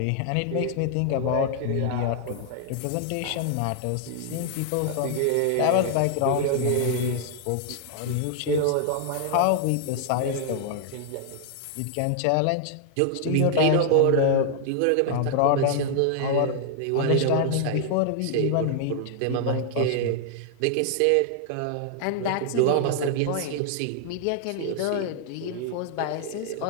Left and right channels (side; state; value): both; different; correlation -0.01